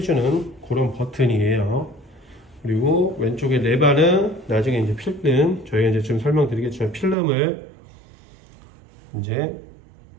그런 버튼이에요. 그리고 왼쪽에 레바는 나중에 이제 필름, 저희가 이제 좀 설명드리겠지만 필름을 이제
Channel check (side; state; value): left; drops out; at 7.2 s